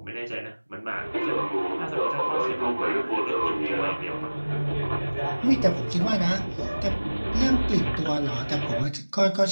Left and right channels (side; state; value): both; inverted; correlation -1.00